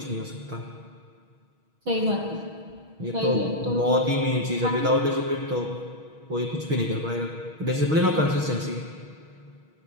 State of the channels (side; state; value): left; late; 6.3 ms